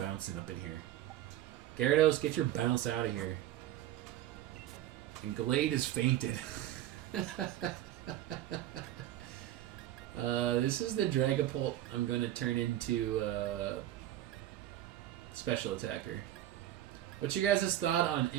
up in here. Gyarados, get your bounce out of here. And Glade is fainted. This is the Dragapult I'm going to turn into Special Attacker. What's your guys' thought on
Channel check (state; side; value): quieter; left; 13.1 dB